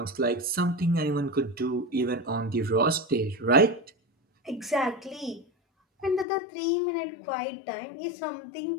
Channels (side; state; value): right; drops out; at 6.2 s